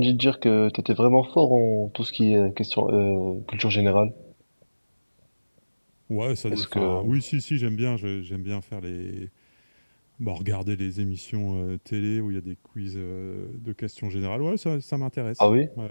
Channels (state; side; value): inverted; both; correlation -1.00